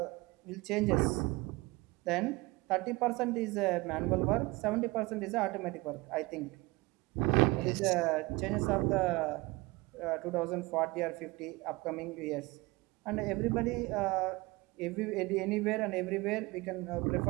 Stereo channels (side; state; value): left; quieter; 23.0 dB